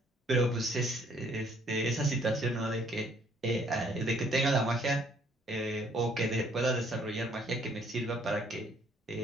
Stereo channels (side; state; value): both; normal; correlation 0.64